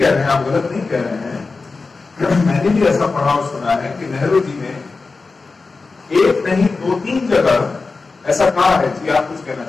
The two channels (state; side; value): quieter; right; 4.0 dB